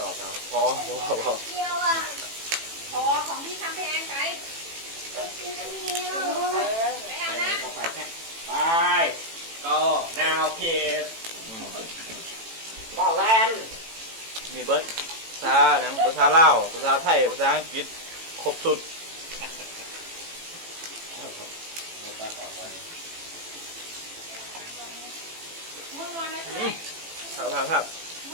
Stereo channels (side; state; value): left; late; 18 ms